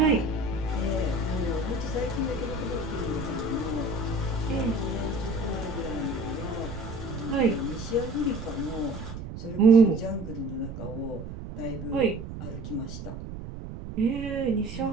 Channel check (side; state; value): right; noise; rumble, 9 dB below the sound